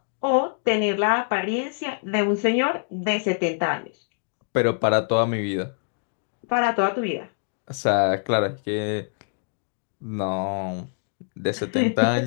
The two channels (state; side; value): silent; right; digital silence